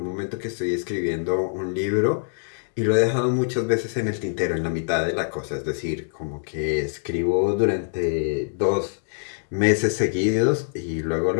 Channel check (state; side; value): silent; right; digital silence